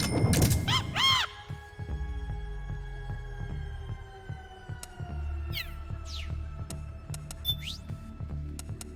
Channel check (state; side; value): identical; both; correlation 1.00